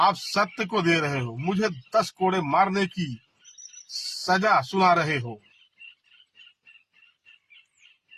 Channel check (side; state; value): both; identical; correlation 1.00